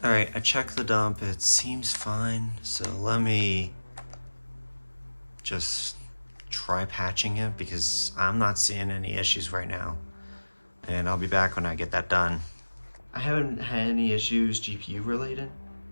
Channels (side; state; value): both; inverted; correlation -1.00